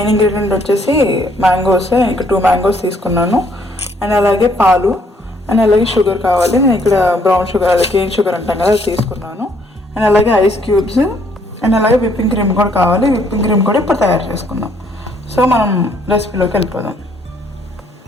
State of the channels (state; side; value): normal; both; correlation 0.66